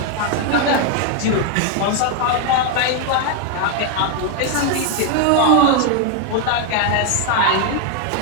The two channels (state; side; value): different; both; correlation 0.01